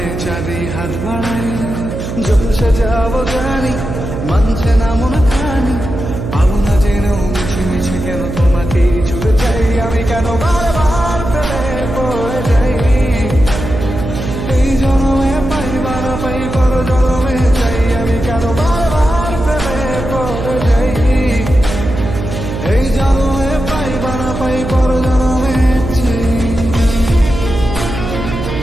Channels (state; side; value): noise; right; hum, 6 dB below the sound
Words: চাঁদে হাত বাড়াই। জলসে যাবো জানি, মানছে না মন খানি, পাবো না জেনেও মিছে মিছে কেন তোমাকেই ছুটে চাই। আমি কেন বারবার ফেলে পড়ে যাই, এই জন্মে পাই বা না পাই পর জন্মে চাই। আমি কেন বারবার ফেলে পড়ে যাই, এই জন্মে পাই বা না পাই পর জন্মে চাই।